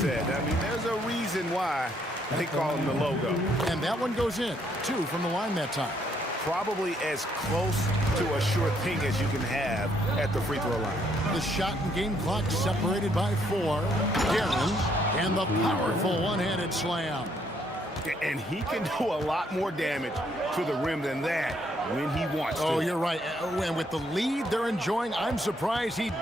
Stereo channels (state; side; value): normal; both; correlation 0.70